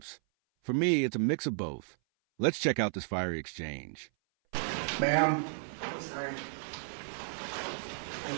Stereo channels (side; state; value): left; silent; 55 dB below the other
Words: For me, it's a mix of both. Let's check out this fiery exchange. Ma'am. I'm sorry. I'm